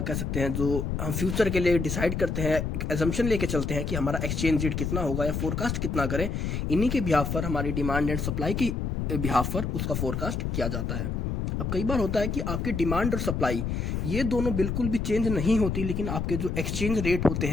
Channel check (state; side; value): noise; left; rumble, 2 dB below the sound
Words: कह सकते हैं जो हम फ्यूचर के लिए डिसाइड करते हैं, एक एजम्पशन लेके चलते हैं कि हमारा एक्सचेंज रेट कितना होगा या फोरकास्ट कितना करें, इन्हीं के बिहाफ पर हमारी डिमांड एंड सप्लाई की बिहाफ पर उसका फोरकास्ट किया जाता है। अब कई बार होता है कि आपके डिमांड और सप्लाई ये दोनों बिल्कुल भी चेंज नहीं होती, लेकिन आपके जो एक्सचेंज रेट होते